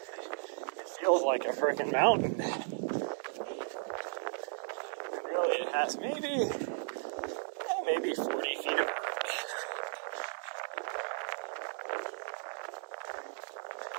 it feels like a freaking mountain. And really, it has maybe 40 feet of vert.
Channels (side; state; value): left; silent; digital silence